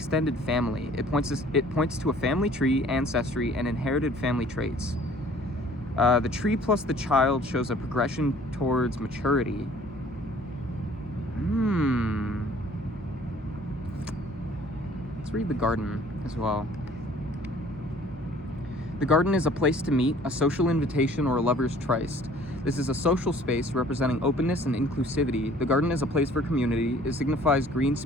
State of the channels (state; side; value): normal; both; correlation 0.53